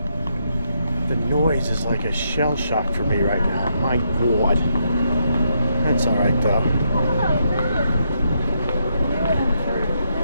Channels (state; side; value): inverted; both; correlation -0.78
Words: The noise is like a shell shock for me right now. My God. That's all right though.